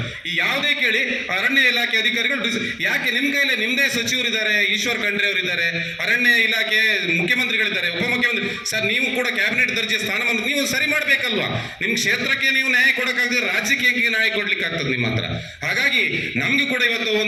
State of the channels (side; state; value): both; identical; correlation 1.00